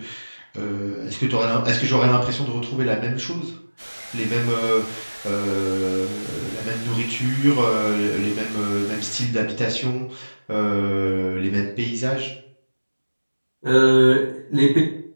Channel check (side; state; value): both; inverted; correlation -1.00